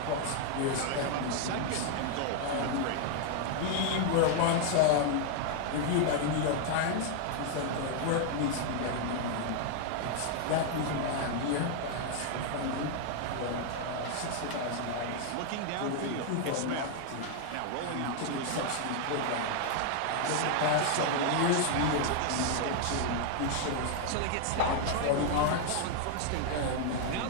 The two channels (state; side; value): different; both; correlation 0.00